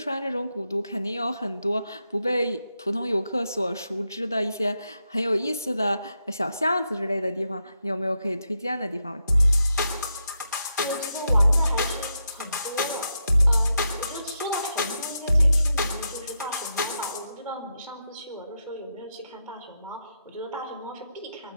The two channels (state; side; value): inverted; both; correlation -0.84